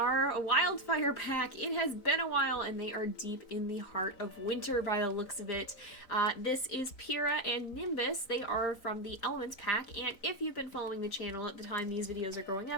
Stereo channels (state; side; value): late; right; 3.9 ms